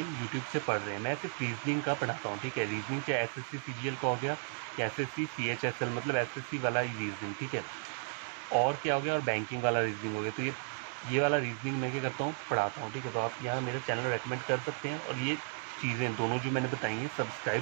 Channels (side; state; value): left; silent; 55 dB below the other